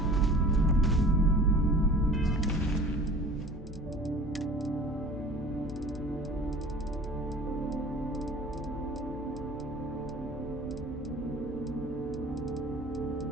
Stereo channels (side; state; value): both; normal; correlation 0.43